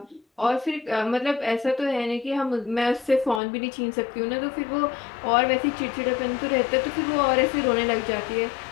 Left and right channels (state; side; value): drops out; right; at 3.4 s